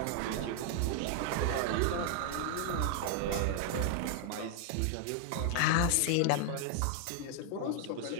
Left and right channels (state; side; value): different; both; correlation 0.00